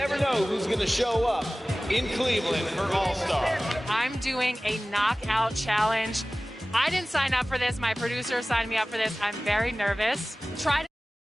know who's going to show up in Cleveland for All-Star. I'm doing a knockout challenge. I didn't sign up for this. My producer signed me up for this. I'm very nervous. Try to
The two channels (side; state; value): both; normal; correlation 0.97